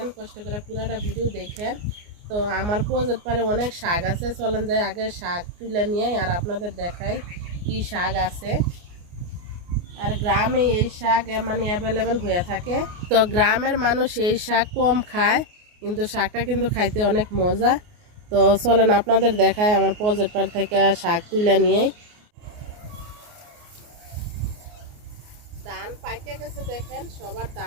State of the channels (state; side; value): late; left; 28 ms